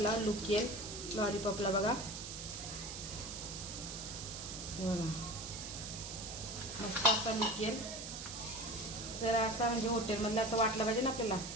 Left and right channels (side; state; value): right; noise; hiss, 8 dB below the sound